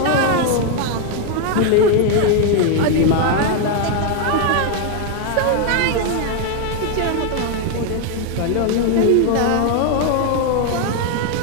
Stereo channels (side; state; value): both; different; correlation 0.01